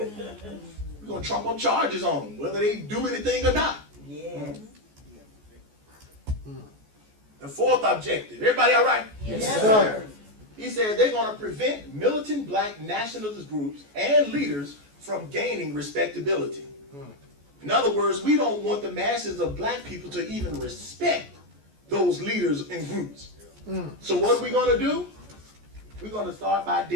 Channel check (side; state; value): left; late; 14 ms